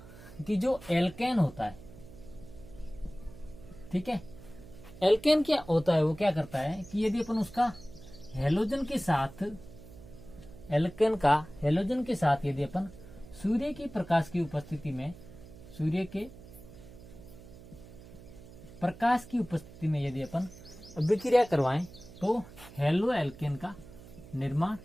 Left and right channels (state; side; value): noise; right; hum, 18 dB below the sound